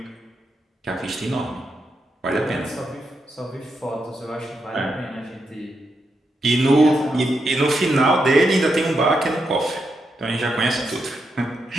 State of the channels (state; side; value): normal; both; correlation 0.83